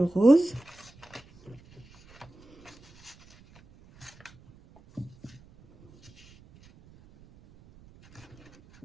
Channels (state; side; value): noise; right; rumble, 26 dB below the sound